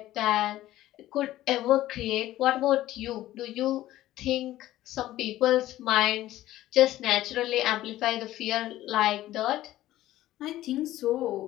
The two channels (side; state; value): right; quieter; 14.8 dB